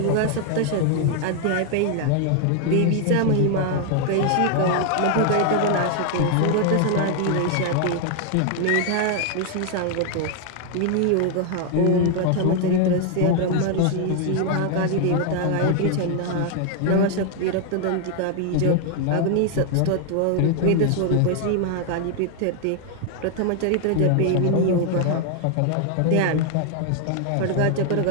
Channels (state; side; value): different; both; correlation 0.00